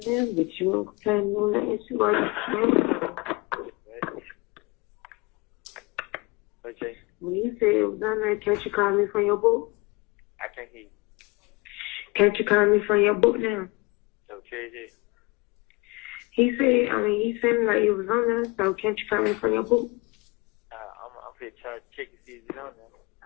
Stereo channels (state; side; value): quieter; right; 25.7 dB